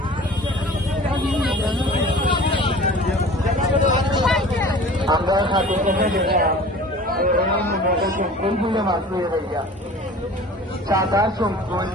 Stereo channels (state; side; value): normal; both; correlation 0.43